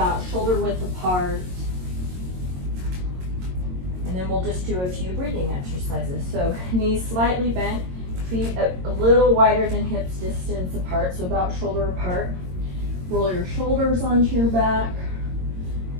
shoulder width apart. And then we'll just do a few breathing exercises. So knees slightly bent, feet a little wider than hips distance apart, so about shoulder apart. Roll your shoulders onto your back.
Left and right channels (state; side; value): late; left; 22 ms